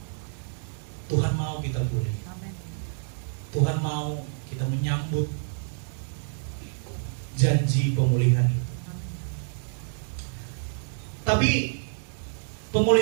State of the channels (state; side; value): silent; left; digital silence